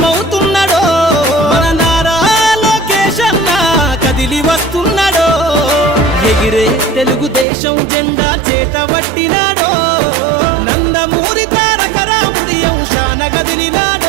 మన నారా లోకేష్ అన్న కదిలి వస్తున్నాడో ఎగిరే తెలుగుదేశం జెండా చేతబట్టినాడో నందమూరి తారక రాముడి అంశాన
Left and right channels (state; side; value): drops out; left; at 7.5 s